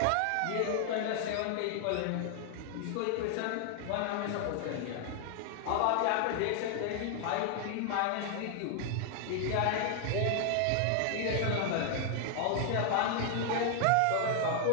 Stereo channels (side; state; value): both; different; correlation 0.00